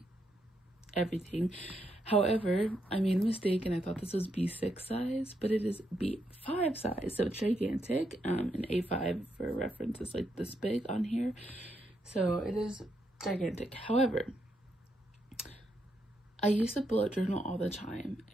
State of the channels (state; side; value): normal; both; correlation 0.79